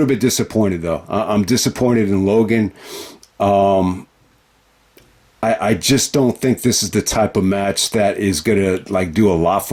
bit disappointed, though. I'm disappointed in Logan. I just don't think this is the type of match that is going to do a lot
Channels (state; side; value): identical; both; correlation 1.00